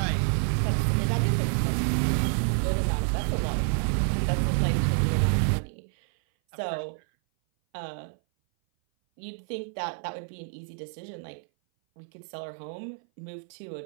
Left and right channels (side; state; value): left; silent; 58 dB below the other